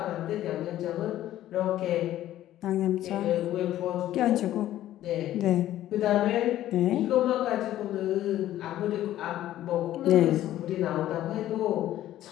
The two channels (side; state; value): right; quieter; 13.3 dB